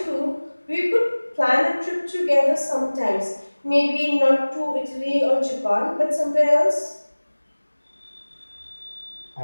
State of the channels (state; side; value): inverted; both; correlation -1.00